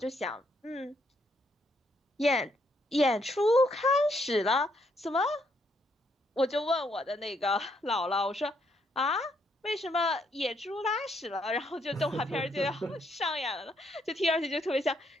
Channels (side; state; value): both; normal; correlation 0.73